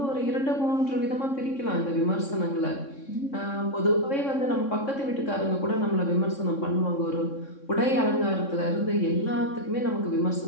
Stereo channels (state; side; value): late; right; 3.6 ms